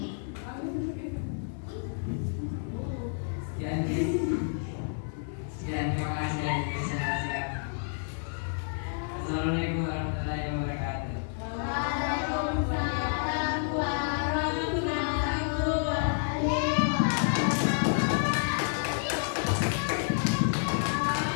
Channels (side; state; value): right; silent; digital silence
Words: Sekian, terima kasih atas perhatian. Assalamualaikum warahmatullahi wabarakatuh. Waalaikumsalam warahmatullahi